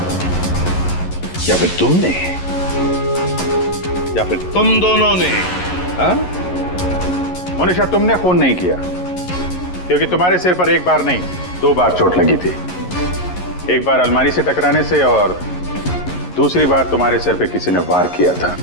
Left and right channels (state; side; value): late; right; 11 ms